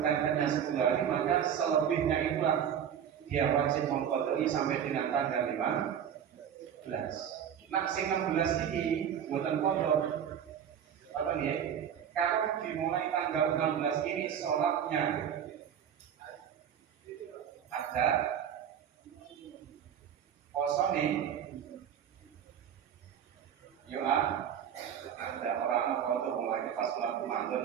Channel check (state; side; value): quieter; left; 8.9 dB